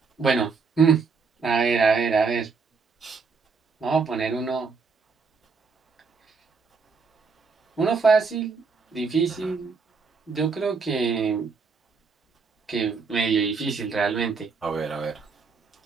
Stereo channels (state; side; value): quieter; left; 4.8 dB